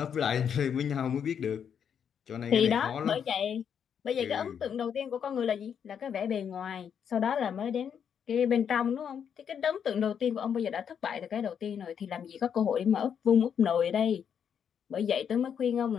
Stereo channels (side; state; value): right; quieter; 7.9 dB